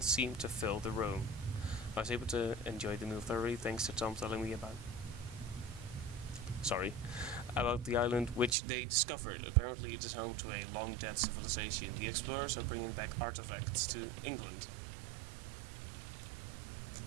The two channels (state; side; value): drops out; left; at 8.6 s